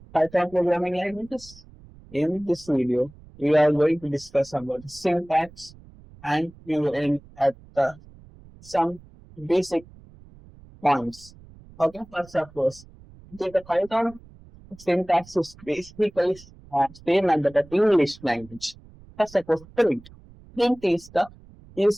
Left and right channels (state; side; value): noise; right; rumble, 22 dB below the sound